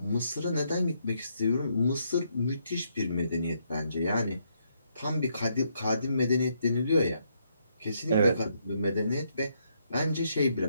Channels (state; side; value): inverted; both; correlation -0.75